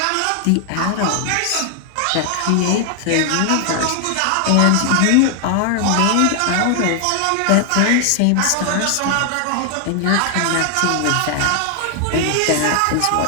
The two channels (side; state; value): both; different; correlation 0.00